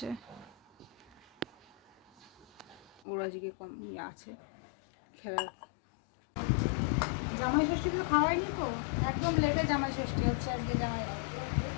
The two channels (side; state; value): right; drops out; at 3.0 s